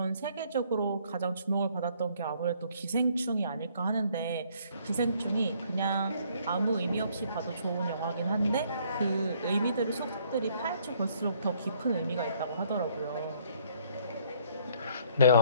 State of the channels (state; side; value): inverted; both; correlation -0.63